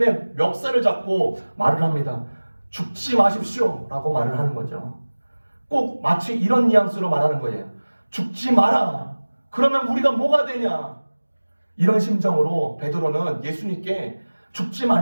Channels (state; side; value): inverted; both; correlation -1.00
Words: 멱살을 잡고 말을 합니다. 죽지 마십시오 라고 말을 하는 거죠. 꼭 마치 이런 뉘앙스로 말하는 거예요. 죽지 마라. 그러면 우리가 뭐가 되냐. 이런 심정으로 베드로는 예수님께 죽지